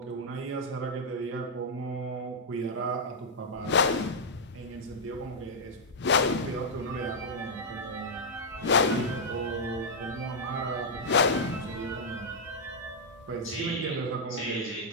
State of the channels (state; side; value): normal; both; correlation -0.06